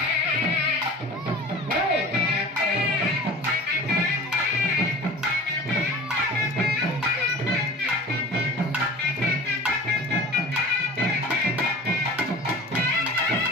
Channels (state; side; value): normal; both; correlation 0.39